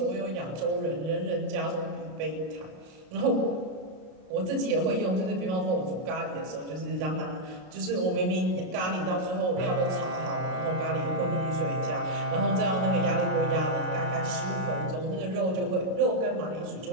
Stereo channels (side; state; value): left; late; 32 ms